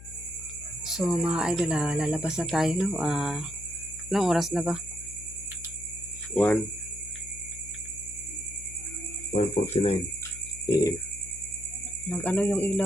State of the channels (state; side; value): noise; left; hum, 15 dB below the sound